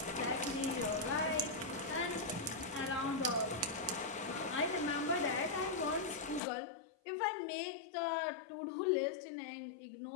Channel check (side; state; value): right; drops out; at 6.4 s